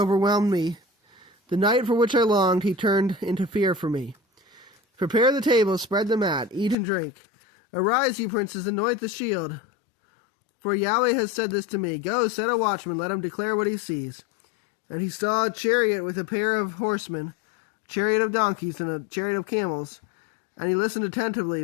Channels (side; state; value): right; drops out; at 6.8 s